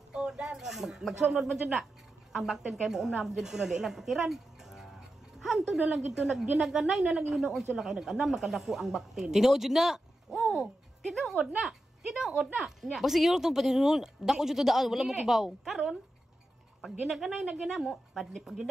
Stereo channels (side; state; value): both; normal; correlation 0.90